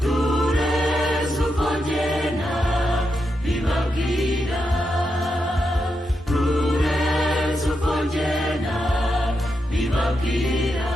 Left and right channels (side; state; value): both; normal; correlation 0.85